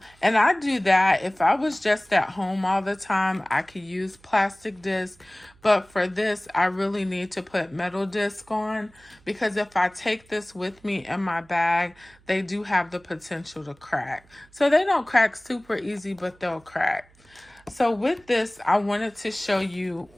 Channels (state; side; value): noise; right; hum, 29 dB below the sound